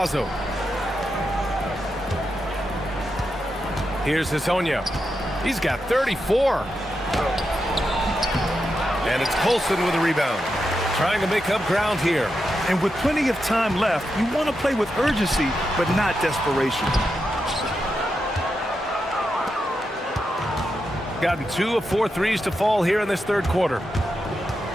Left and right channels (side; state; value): both; normal; correlation 0.86